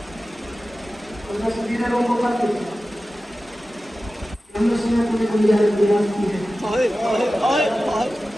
سبھی لوگوں کو کرتے ہم نے سنا پوری دنیا میں بیان کی ہے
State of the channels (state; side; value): normal; both; correlation 0.95